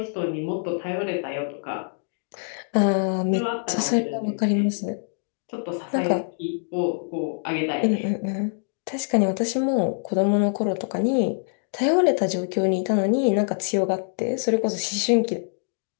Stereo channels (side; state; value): right; silent; digital silence